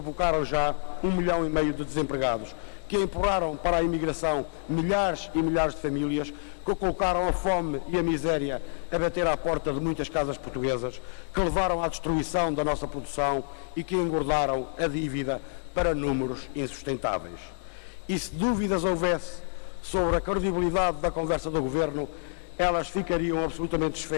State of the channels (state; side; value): silent; right; 59 dB below the other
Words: já 1,5 milhão de desempregados, que empurraram para a imigração milhares e milhares de famílias, que colocaram a fome e a miséria a bater à porta de muitas casas portuguesas, que levaram à destruição da nossa produção e que engordaram a dívida para números insustentáveis. E se dúvidas houvesse sobre a credibilidade da conversa do Governo, elas ficariam absolutamente